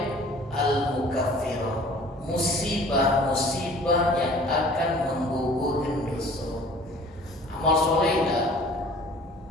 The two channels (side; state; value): both; normal; correlation 0.49